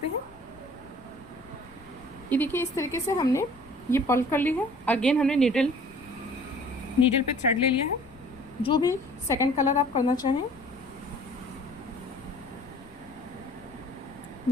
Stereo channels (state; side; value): noise; left; rumble, 25 dB below the sound